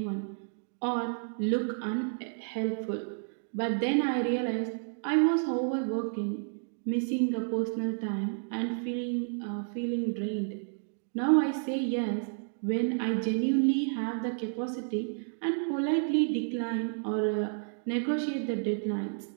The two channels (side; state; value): left; silent; digital silence